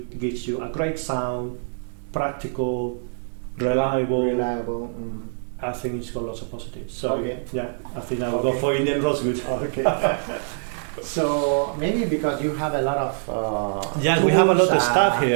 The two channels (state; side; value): silent; left; digital silence